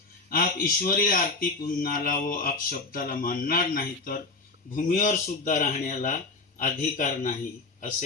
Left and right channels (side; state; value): right; quieter; 3.7 dB